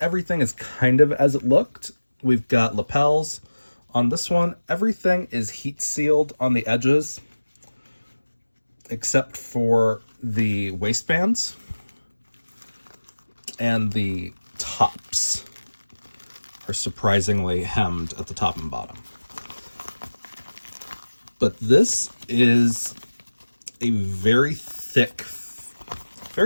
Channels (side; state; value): both; inverted; correlation -1.00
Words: is kind of as it looked. We've got lapels on this one. Everything is heat sealed on the edges, except for the waistbands and the tops are surprisingly hemmed at the top and bottom. But this is a very thick